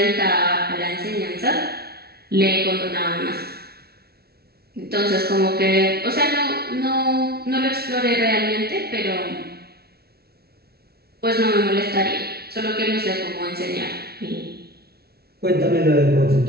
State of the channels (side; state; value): left; late; 0.45 ms